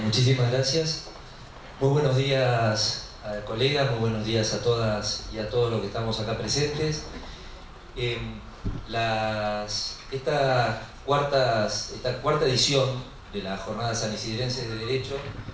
muchísimas gracias. Muy buenos días, colegas, muy buenos días a todas y a todos los que estamos acá presentes. Esta cuarta edición de las Jornadas Sanisidrenses de Derecho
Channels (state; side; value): identical; both; correlation 1.00